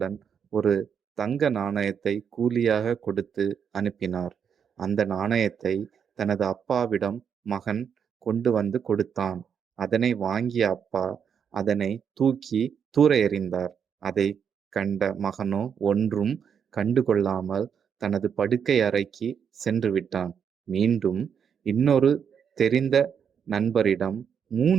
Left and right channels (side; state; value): left; quieter; 7.4 dB